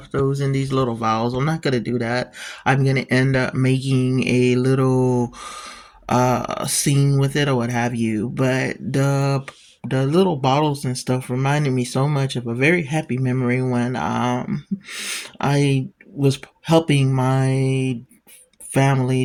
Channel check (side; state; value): both; identical; correlation 1.00